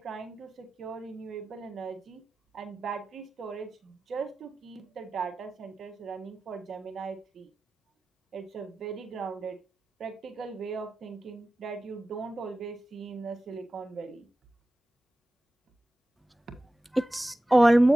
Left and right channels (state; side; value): normal; both; correlation 0.95